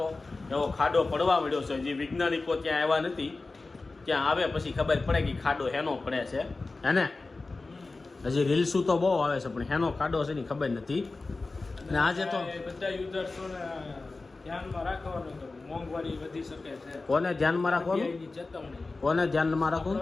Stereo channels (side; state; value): right; quieter; 3.6 dB